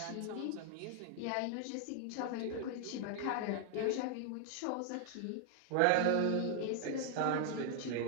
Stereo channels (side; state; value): both; different; correlation 0.00